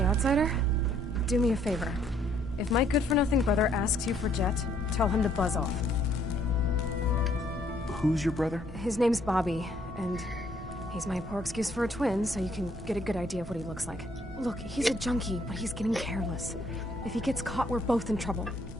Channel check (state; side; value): normal; both; correlation 0.66